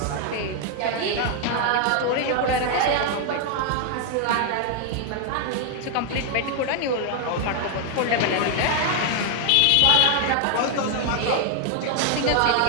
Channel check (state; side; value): different; both; correlation 0.00